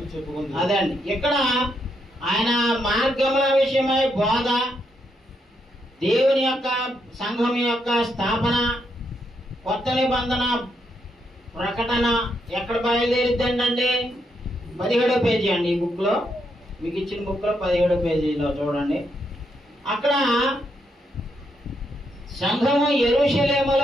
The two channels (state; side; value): normal; both; correlation 0.79